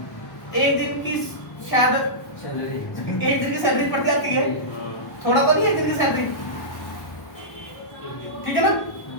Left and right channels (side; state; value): right; late; 1.1 ms